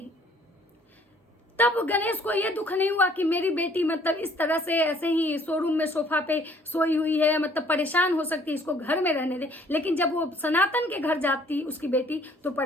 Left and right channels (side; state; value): both; normal; correlation 0.59